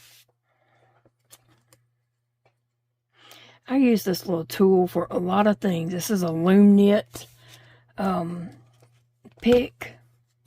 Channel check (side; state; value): both; identical; correlation 1.00